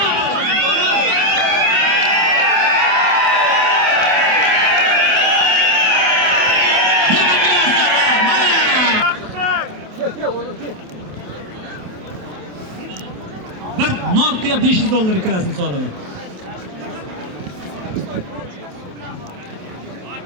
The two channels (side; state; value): left; late; 27 ms